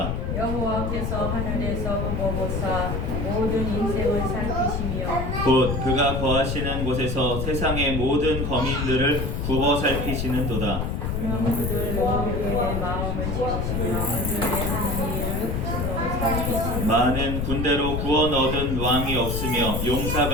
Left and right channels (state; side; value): noise; left; rumble, 1 dB below the sound